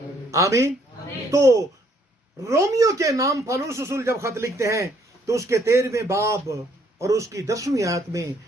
आमीन। तो रोमियो के नाम पौलुस रसूल जब खत लिखते हैं तो उसके 13वें बाब और उसकी 10वीं आयत में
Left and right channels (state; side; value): normal; both; correlation 0.66